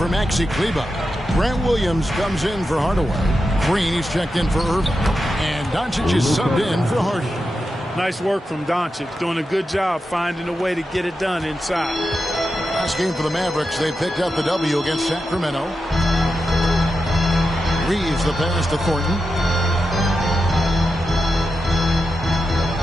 Maxi Kleber. Grant Williams comes in for Hardaway. Green, he's checked in for Irving. And Doncic is subbed in for Hardy. Nice work from Doncic, doing a good job finding a way to get it done inside. Last game for the Mavericks, they picked up the W against Sacramento. Reeves the pass to Thornton.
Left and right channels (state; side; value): normal; both; correlation 0.89